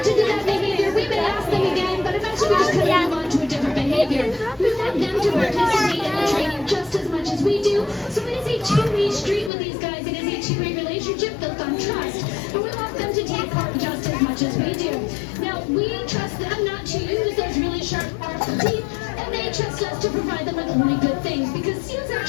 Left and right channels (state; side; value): drops out; right; at 9.5 s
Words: to do that behavior, we may ask them again, but eventually we just kind of move on to a different behavior. We want them to participate in the training just as much as we do. So it is a two-way street with these guys. It is a two-way relationship built on trust. But we want them to take part just as much as we do. Now, we trust them not to use those really sharp, powerful teeth, and they trust us to provide them with only good things, because seals